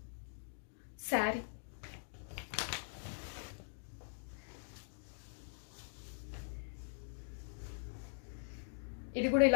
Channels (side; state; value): right; silent; digital silence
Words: శారీ ఇది కూడా